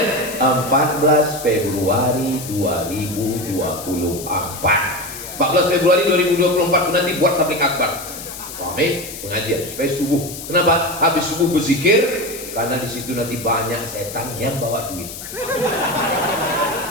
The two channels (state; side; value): noise; left; hiss, 11 dB below the sound